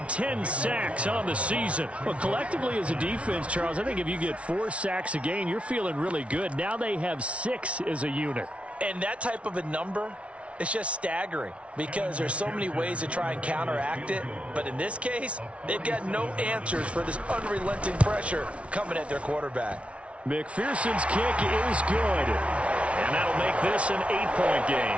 10 sacks on the season. Well, collectively as a defense, Charles, I think if you get 4 sacks a game, you're feeling really good. Now they have 6 as a unit. And that type of a number, it's just staggering because there's so many ways to try and counteract it. But in this case, they've got no answers for this unrelenting pressure coming at their quarterback. McPherson's kick is good. And that'll make this an 8-point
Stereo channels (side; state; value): left; late; 0.062 ms